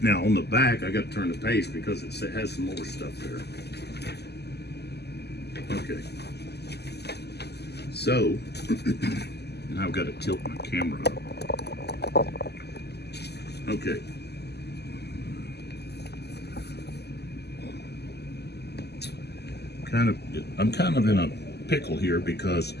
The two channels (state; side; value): late; right; 0.48 ms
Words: Now on the back, I got to turn the page because it has some more stuff there. Okay. So, now I've got to tilt my camera up. Okay. I'm kind of in a pickle here because